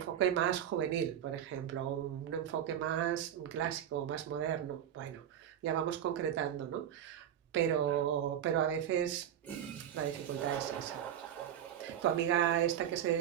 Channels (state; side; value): quieter; left; 10.1 dB